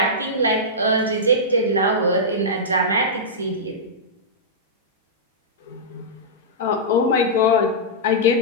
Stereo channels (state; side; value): normal; both; correlation -0.13